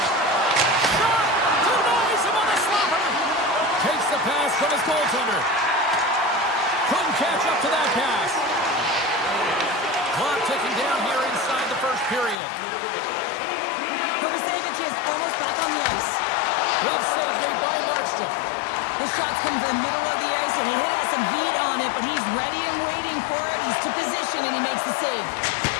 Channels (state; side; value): drops out; right; at 12.4 s